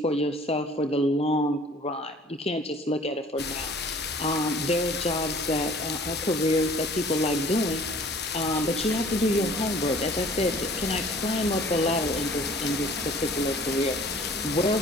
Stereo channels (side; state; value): both; normal; correlation 0.51